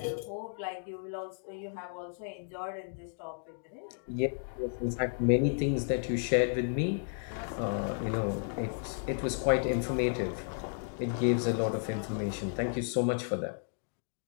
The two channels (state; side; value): silent; right; digital silence